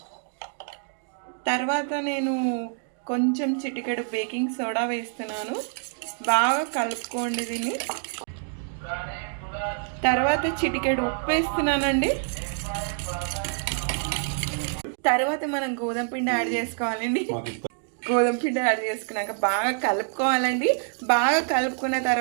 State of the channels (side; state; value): left; silent; 60 dB below the other